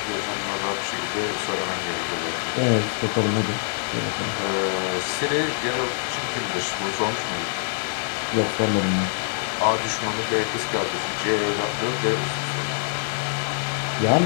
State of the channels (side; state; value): right; silent; digital silence